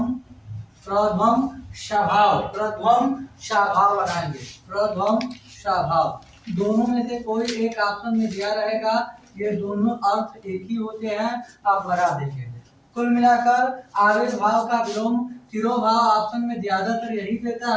प्रध्वम स्वभाव, प्रध्वम स्वभाव लगाएंगे, प्रध्वम स्वभाव। दोनों में से कोई एक ऑप्शन में दिया रहेगा, ये दोनों अर्थ एक ही होते हैं, आप लगा देंगे। कुल मिलाकर आविर्भाव का विलोम तिरोभाव ऑप्शन में ज्यादातर यही देता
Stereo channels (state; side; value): identical; both; correlation 1.00